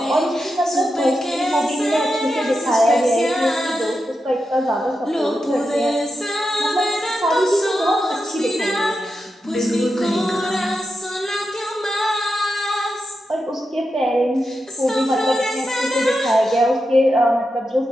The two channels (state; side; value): normal; both; correlation 0.88